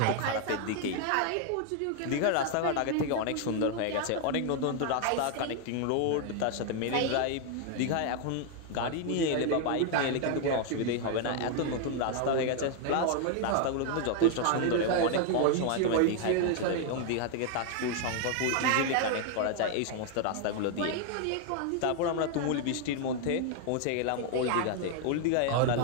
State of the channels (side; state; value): both; different; correlation 0.00